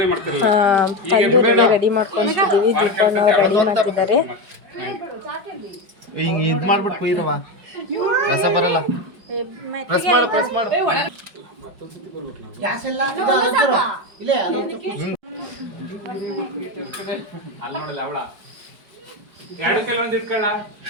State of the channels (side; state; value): left; late; 5.2 ms